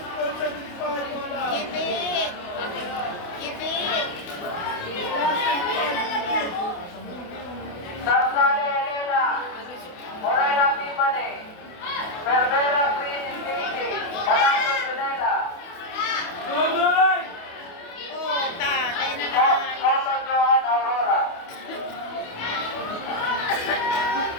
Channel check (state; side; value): late; right; 28 ms